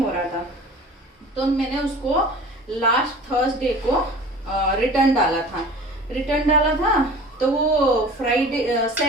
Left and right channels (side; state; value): both; normal; correlation 0.42